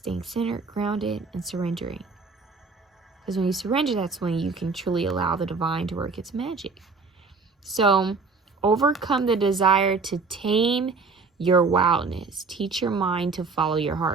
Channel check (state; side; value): quieter; left; 4.4 dB